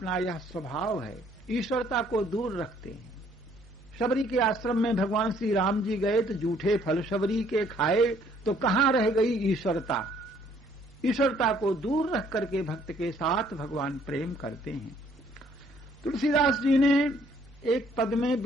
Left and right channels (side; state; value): both; normal; correlation 0.63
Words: यह स्वभाव है, ईश्वरता को दूर रखते हैं। शबरी के आश्रम में भगवान श्री राम जी गए तो जूठे फल शबरी के खाए, तो कहां रह गई ईश्वरता। ईश्वरता को दूर रख करके भक्त के साथ भगवान प्रेम करते हैं। तुलसीदास जी ने एक पद में,